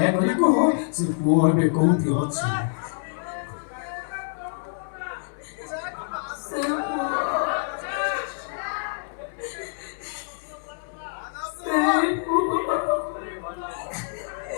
କୁହ ସେ ପୁଅ ଏବେ କୋଉଠି ଅଛି।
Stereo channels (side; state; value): right; silent; 61 dB below the other